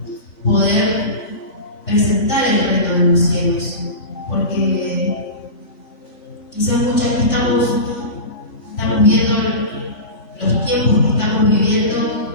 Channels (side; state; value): right; late; 2.5 ms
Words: poder presentar el reino de los cielos, porque quizás muchas veces estamos viendo los tiempos que estamos viviendo